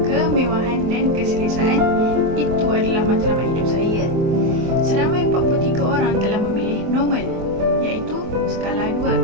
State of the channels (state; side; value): late; left; 24 ms